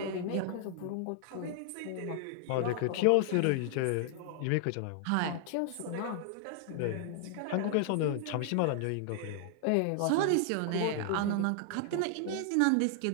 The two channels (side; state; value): both; different; correlation 0.00